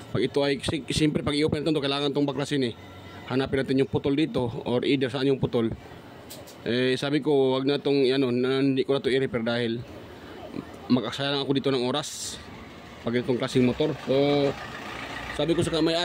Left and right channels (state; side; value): identical; both; correlation 1.00